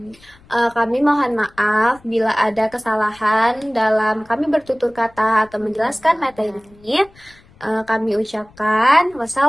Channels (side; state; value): left; noise; rumble, 28 dB below the sound